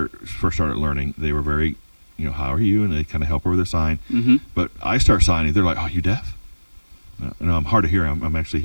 first started learning, they were very how are you? And they kind of help her with a sign. Mm-hmm. But I start signing. They're like, oh, you deaf? No, I'm hard of hearing. I'm actually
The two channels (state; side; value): inverted; both; correlation -1.00